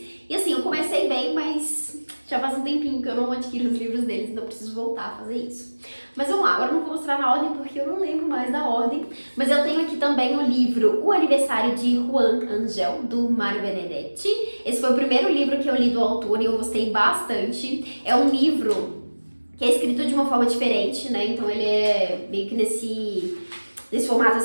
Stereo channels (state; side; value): inverted; both; correlation -1.00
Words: E assim, eu comecei bem, mas já faz um tempinho que eu não adquiro os livros deles, então eu preciso voltar a fazer isso. Mas vamos lá, agora eu não vou mostrar na ordem porque eu não lembro mais da ordem. Mas eu tenho aqui também o livro O Aniversário de Juan Angel, do Mário Benedetti. Esse foi o primeiro livro que eu li do autor e eu gostei bastante. É um livro que é escrito de uma forma diferente, né? Então ele é meio que nesse formato